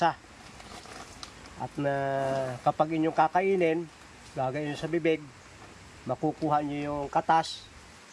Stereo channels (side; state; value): both; identical; correlation 1.00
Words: At kapag inyong kakainin, gagayin sa bibig, makukuha nyo yung katas